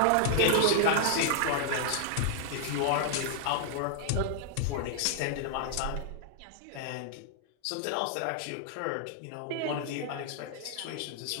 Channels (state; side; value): different; both; correlation -0.01